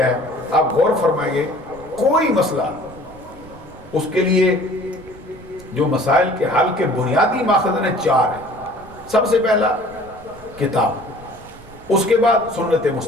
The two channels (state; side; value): noise; right; rumble, 21 dB below the sound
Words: ہے؟ آپ غور فرمائیں گے، کوئی مسئلہ اس کے لیے جو مسائل کے حل کے بنیادی ماخذ ہیں 4 ہیں. سب سے پہلا کتاب، اس کے بعد سنت